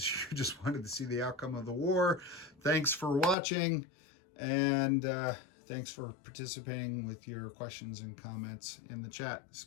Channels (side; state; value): right; drops out; at 3.4 s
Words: you just wanted to see the outcome of the war, thanks for watching, and thanks for participating with your questions and comments in the chat. This is